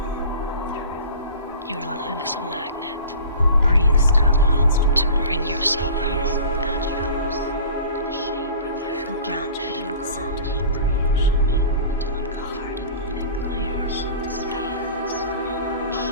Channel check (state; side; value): inverted; both; correlation -0.41